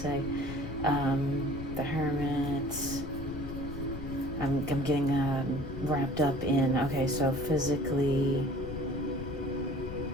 The Hermit. I'm getting wrapped up in, okay, so physically,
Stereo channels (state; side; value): noise; left; rumble, 8 dB below the sound